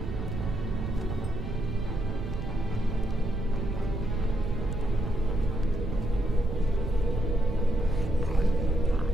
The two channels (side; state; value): right; noise; rumble, 5 dB below the sound